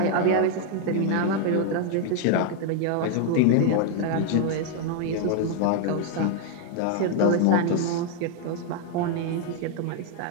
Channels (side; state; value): both; different; correlation 0.00